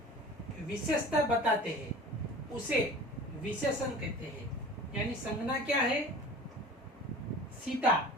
विशेषता बताते हैं उसे विशेषण कहते हैं। यानी संज्ञा क्या है? सीता।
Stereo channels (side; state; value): both; normal; correlation 0.40